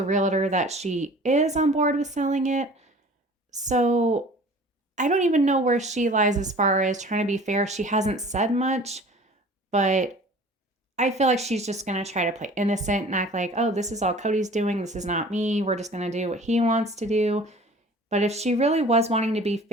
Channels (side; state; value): both; normal; correlation 0.46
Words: realtor that she is on board with selling it. So I don't even know where she lies as far as trying to be fair. She hasn't said much, but I feel like she's just going to try to play innocent and act like, oh, this is all Cody's doing. This is not me. We're just going to do what he wants to do. But if she really was wanting to be